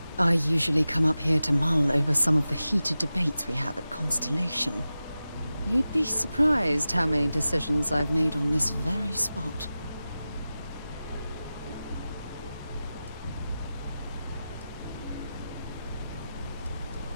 I usually come up here to mull over some of the heated debates we have at Constellation. You'd be surprised how many decisions I've made on this very spot.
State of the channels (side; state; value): both; inverted; correlation -0.94